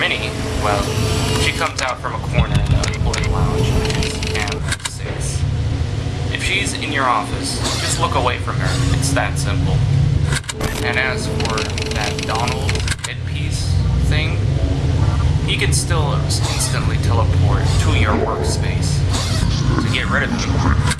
well, she comes out from a corner in the employee lounge, which is cam 6. If she's in your office, just look away from her. It's that simple. And as for that Donald headpiece thing, he can still instantly teleport to your workspace. To get rid of him,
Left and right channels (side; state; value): both; identical; correlation 1.00